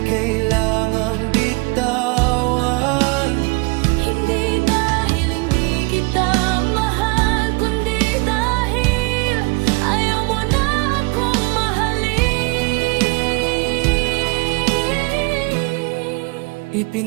kailangang bitawan. Hindi dahil hindi kita mahal, kundi dahil ayaw mo na akong mahalin.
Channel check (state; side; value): quieter; left; 28.3 dB